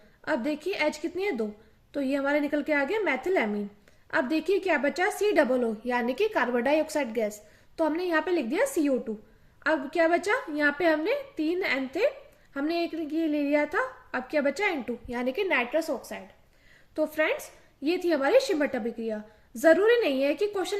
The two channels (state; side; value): identical; both; correlation 1.00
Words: अब देखिए H कितनी है? 2, तो ये हमारे निकल के आ गया मेथिल एमीन। अब देखिए क्या बचा? COO यानी कि कार्बन डाइऑक्साइड गैस, तो हमने यहाँ पे लिख दिया CO2। अब क्या बचा? यहाँ पे हमने 3 N थे, हमने एक ये ले लिया था। अब क्या बचा? N2 यानी कि नाइट्रस ऑक्साइड। तो फ्रेंड्स, ये थी हमारी शिमट अभिक्रिया। जरूरी नहीं है कि